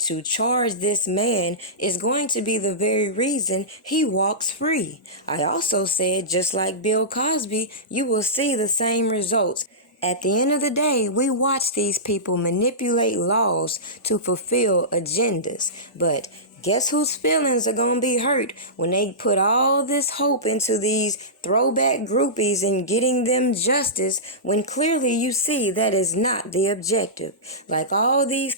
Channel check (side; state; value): both; normal; correlation -0.18